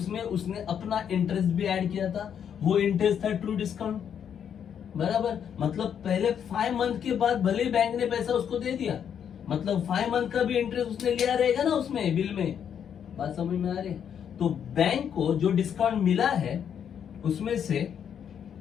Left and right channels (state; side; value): quieter; right; 8.4 dB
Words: उसने अपना इंटरेस्ट भी ऐड किया था, वो इंटरेस्ट था ट्रू डिस्काउंट, बराबर। मतलब पहले 5 मंथ के बाद भले बैंक ने पैसा उसको दे दिया, मतलब 5 मंथ का भी इंटरेस्ट उसने लिया रहेगा ना उसमें बिल में। बात समझ में आ रही है? तो बैंक को जो डिस्काउंट मिला है उसमें से